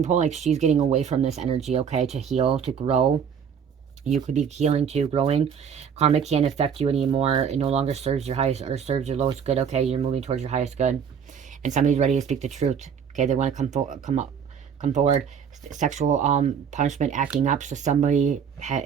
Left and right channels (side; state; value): left; quieter; 7.5 dB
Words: pulling like she's getting away from this energy, okay, to heal, to grow. You could be healing too, growing. Karma can't affect you anymore. It no longer serves your highest or serves your lowest good, okay? You're moving towards your highest good. And somebody's ready to speak the truth, okay? They want to come forward. Sexual punishment, acting up. So somebody